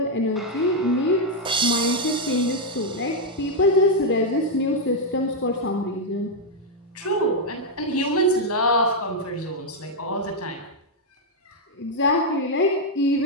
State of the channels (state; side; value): normal; both; correlation 0.00